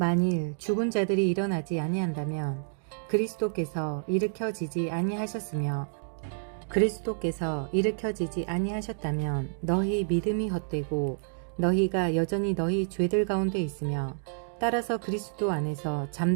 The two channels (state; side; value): silent; left; digital silence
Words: 죽은 자들이 일어나지 아니한다면 그리스도께서 일으켜지지 아니하셨으며 그리스도께서 일으켜지지 아니하셨다면 너희 믿음이 헛되고 너희가 여전히 너희 죄들 가운데 있으며 따라서 그리스도 안에서